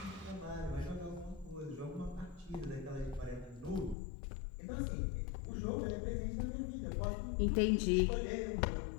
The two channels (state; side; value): drops out; right; at 4.0 s